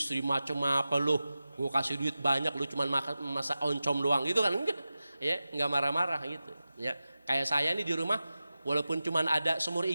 macam apa lu? Gua kasih duit banyak, lu cuman masak oncom doang gitu kan? Enggak. Ya, enggak marah-marah gitu. Ya. Kayak saya nih di rumah, walaupun cuma ada semur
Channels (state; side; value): inverted; both; correlation -0.94